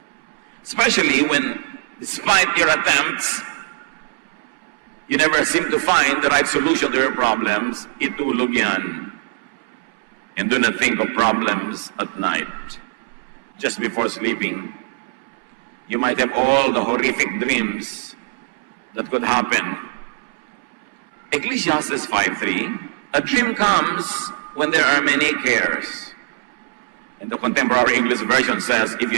Especially when, despite your attempts, you never seem to find the right solution to your problems, itulog yan. And do not think of problems at night. Just before sleeping, you might have all the horrific dreams that could happen. Ecclesiastes 5:3, a dream comes when there are many cares. And the contemporary English version says, if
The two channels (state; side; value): silent; left; 62 dB below the other